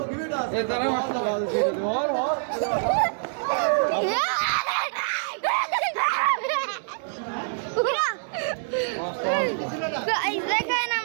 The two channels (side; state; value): left; silent; digital silence